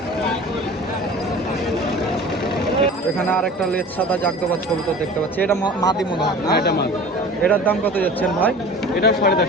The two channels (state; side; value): normal; both; correlation 0.40